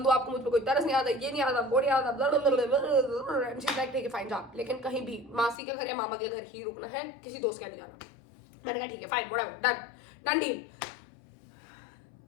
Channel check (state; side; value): drops out; right; at 5.6 s